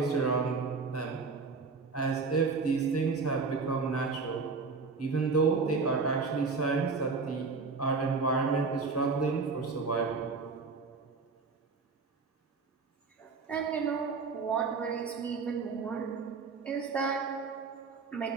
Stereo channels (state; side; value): quieter; left; 4.5 dB